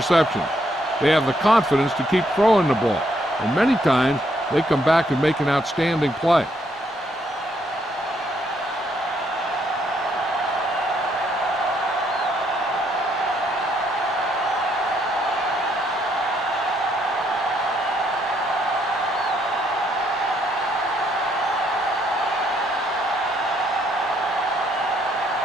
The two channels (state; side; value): normal; both; correlation 0.72